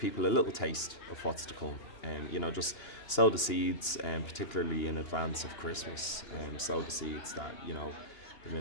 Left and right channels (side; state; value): right; late; 2.9 ms